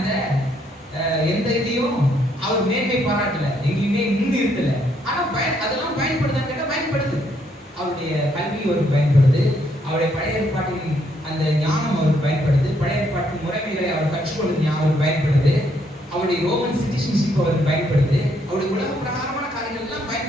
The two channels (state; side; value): normal; both; correlation 0.72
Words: எந்த இதையும் அவர் மேன்மை பாராட்டல, எங்கேயுமே முன்னிறுத்தல. ஆனா அதெல்லாம் பயன்படுதான்னு கேட்டா பயன்படுது. அவருடைய கல்வி அவருக்கு பயன்படுது, அவருடைய பழைய ஏற்பாட்டின் அந்த ஞானம் அவருக்கு பயன்படுது, பழைய ஏற்பாட்டு முறைமைகளை அவர் கற்றுக்கொள்வது அவருக்கு பயன்படுது, அவருடைய ரோமன் சிட்டிசன்ஷிப் அவருக்கு பயன்படுது, அவருடைய உலக பிரகாரமான காரியங்கள் எல்லாம்